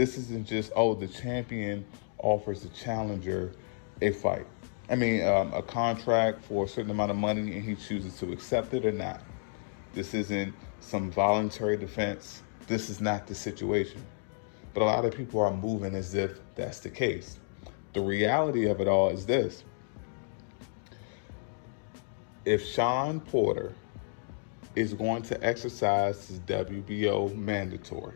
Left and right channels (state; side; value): silent; right; digital silence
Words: isn't just, oh, the champion offers the challenger a fight. A contract for a certain amount of money and he chooses to accept it or not. This isn't some voluntary defense. This is not the situation. But a lot of people are moving as if that's the case. The reality of it all is this. If Shawn Porter is going to exercise his WBO